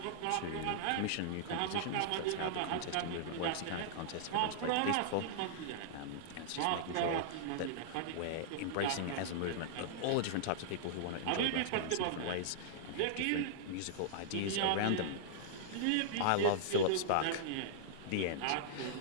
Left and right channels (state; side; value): different; both; correlation -0.02